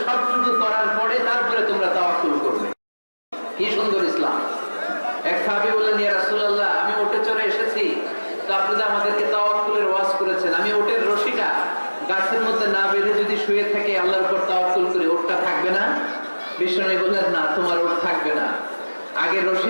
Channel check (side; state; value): both; inverted; correlation -1.00